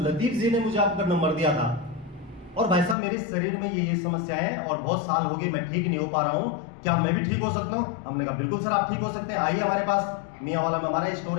लतीफ जी ने मुझे आपका नंबर दिया था और भाई साहब मेरे शरीर में ये समस्या है और बहुत साल हो गए मैं ठीक नहीं हो पा रहा हूँ, क्या मैं भी ठीक हो सकता हूँ? हमने कहा बिल्कुल सर आप ठीक हो सकते हैं, आइए हमारे पास। मियांवाला में हमारा स्टोर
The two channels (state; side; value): drops out; right; at 3.0 s